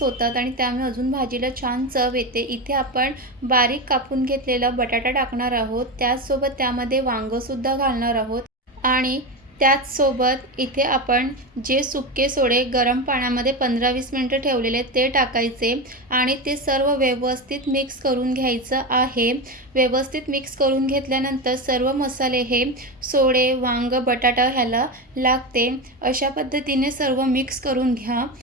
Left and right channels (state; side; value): normal; both; correlation 0.18